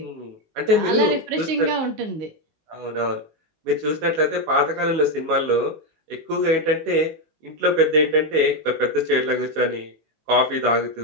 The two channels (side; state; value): left; late; 19 ms